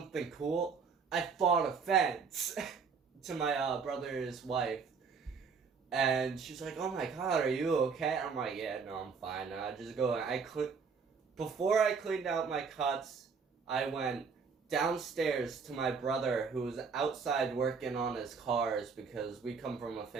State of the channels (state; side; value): quieter; left; 5.5 dB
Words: cool? I fought a fence to my brother's wife. And she's like, oh my god, are you okay? I'm like, yeah, no, I'm fine. I just go, before I cleaned out my cuts, I went downstairs to my brother, who was outside working on his cars, because we come from a